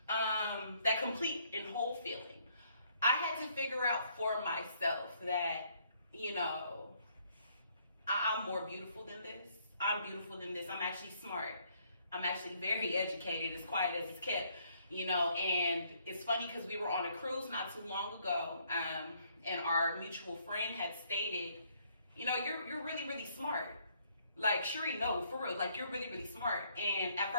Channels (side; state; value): both; inverted; correlation -0.67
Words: that complete and whole feeling. I had to figure out for myself that, you know, I'm more beautiful than this. I'm beautiful than this. I'm actually smart. I'm actually very educated, as quiet as it's kept, you know. And it's funny because we were on a cruise not too long ago, and our mutual friend had stated, you know, you're really, really smart. Like, Sheree, no, for real, like, you're really, really smart. And at